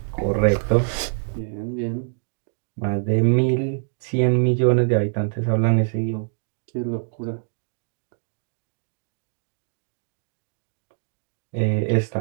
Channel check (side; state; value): left; silent; digital silence